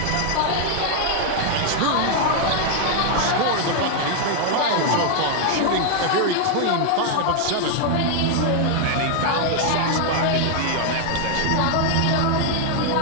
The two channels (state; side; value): different; both; correlation 0.00